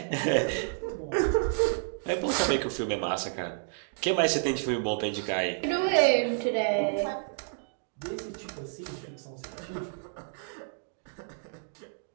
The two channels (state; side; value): silent; left; digital silence